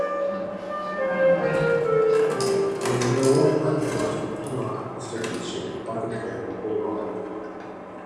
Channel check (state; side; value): identical; both; correlation 1.00